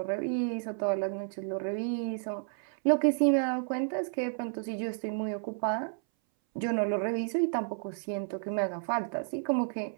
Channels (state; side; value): silent; left; 57 dB below the other